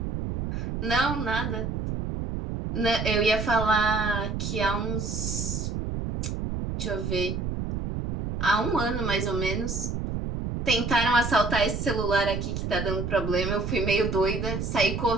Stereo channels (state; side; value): noise; right; rumble, 3 dB below the sound